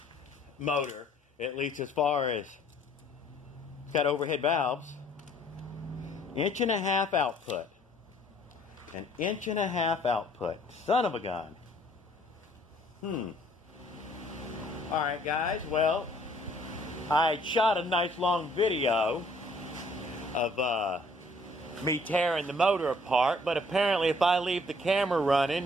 at least as far as it's got overhead valves. 1.5 inch output. 1.5 inch output. Son of a gun. Alright, guys, well, I shot a nice long video of me tearing the motor apart, but apparently if I leave the camera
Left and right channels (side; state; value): both; normal; correlation 0.60